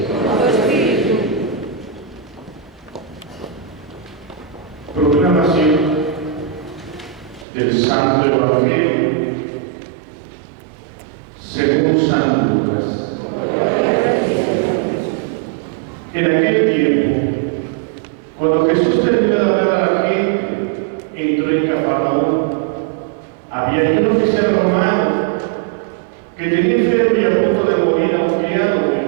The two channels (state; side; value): drops out; left; at 7.5 s